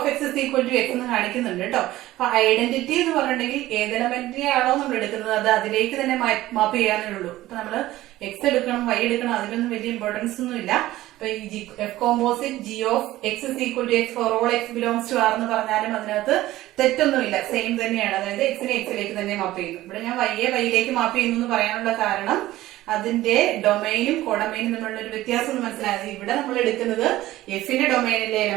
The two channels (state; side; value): quieter; left; 15.9 dB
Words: X is equal to X എന്ന് കാണിക്കുന്നുണ്ട് കേട്ടോ. അപ്പൊ ഐഡന്റിറ്റി എന്ന് പറഞ്ഞിട്ടുണ്ടെങ്കിൽ ഏത് എലമെന്റിനെയാണോ നമ്മൾ എടുക്കുന്നത് അത് അതിലേക്ക് തന്നെ മാപ്പ് ചെയ്യാനേ ഉള്ളൂ. ഇപ്പൊ നമ്മള് എക്സ് എടുക്കണം വൈ എടുക്കണം അതിലൊന്നും വലിയ ഇമ്പോർട്ടൻസ് ഒന്നും ഇല്ല. അപ്പൊ ഈ F composite G of X is equal to X for all X belongs to R എന്ന് പറഞ്ഞാലും അതിനകത്ത് തെറ്റൊന്നുമില്ല, സെയിം തന്നെയാണ്. അതായത് എക്സിനെ എക്സിലേക്ക് തന്നെ മാപ്പ് ചെയ്യുന്നു. ഇവിടെ ഞാൻ വൈയിലേക്ക് മാപ്പ് ചെയ്യുന്നു എന്ന് പറയാനുള്ള കാരണം അതിന്റെ ഡൊമൈനും കോഡൊമൈനും തമ്മിലുള്ള ഒരു വ്യത്യാസം മനസ്സിലായത്. ഇവിടെ നമ്മൾ എടുക്കുന്നത് എഫിന്റെ ഡൊമൈനിലെ